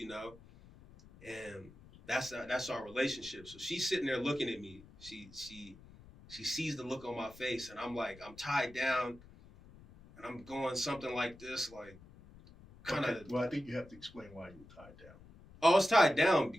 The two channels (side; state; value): left; noise; rumble, 21 dB below the sound